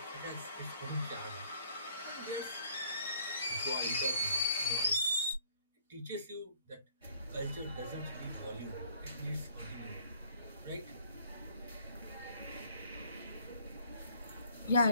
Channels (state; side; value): inverted; both; correlation -0.62